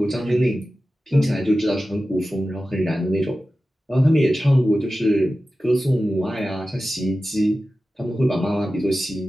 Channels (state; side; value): normal; both; correlation 0.94